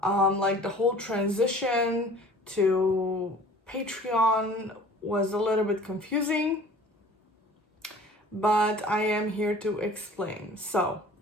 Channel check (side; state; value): both; normal; correlation 0.47